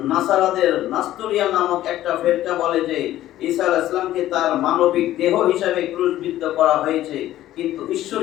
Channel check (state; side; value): quieter; right; 13.8 dB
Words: নাসারাদের নাস্তরিয়া নামক একটা ফেরকা বলে যে ঈসা আলাইহিস সালামকে তার মানবিক দেহ হিসাবে ক্রুশবিদ্ধ করা হয়েছে, কিন্তু ঈশ্বর